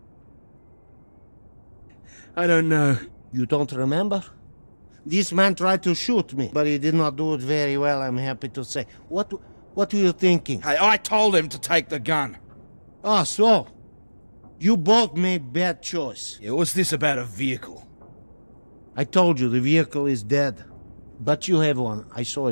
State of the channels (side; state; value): both; inverted; correlation -1.00